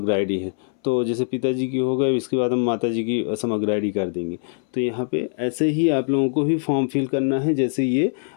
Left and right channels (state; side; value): silent; right; 62 dB below the other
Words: आईडी है। तो जैसे पिताजी की हो गए, इसके बाद हम माता जी की समग्र आईडी कर देंगे। तो यहाँ पे ऐसे ही आप लोगों को भी फॉर्म फिल करना है, जैसे ये